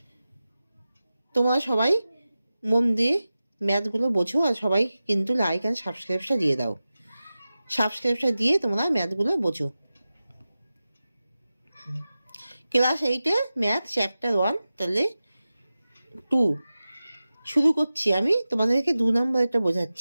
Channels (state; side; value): inverted; both; correlation -0.95